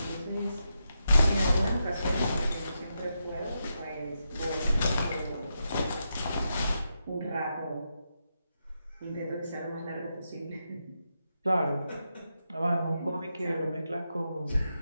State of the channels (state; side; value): inverted; both; correlation -0.85